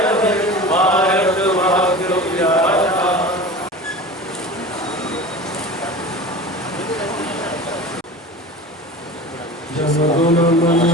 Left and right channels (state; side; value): normal; both; correlation 0.35